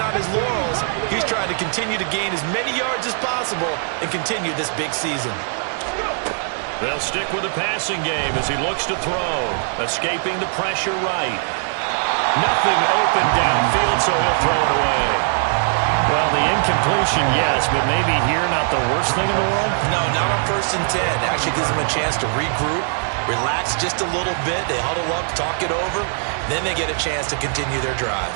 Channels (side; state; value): left; silent; 65 dB below the other